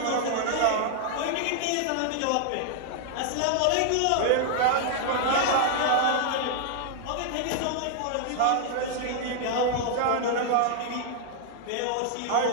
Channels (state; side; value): different; both; correlation 0.00